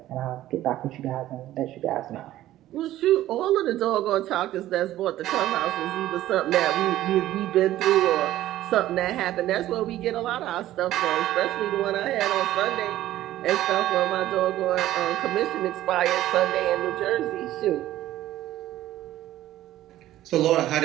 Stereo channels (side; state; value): left; quieter; 14.1 dB